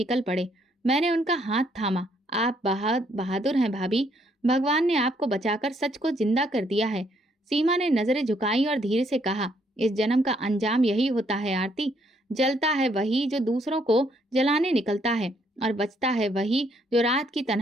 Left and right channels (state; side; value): normal; both; correlation 0.70